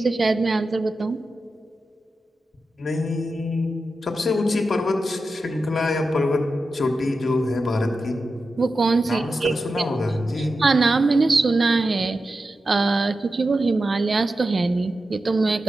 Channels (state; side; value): normal; both; correlation 0.91